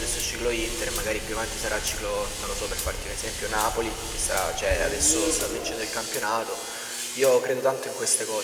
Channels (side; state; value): both; identical; correlation 1.00